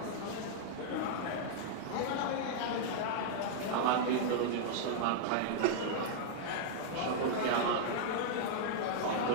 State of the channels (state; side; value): different; both; correlation -0.02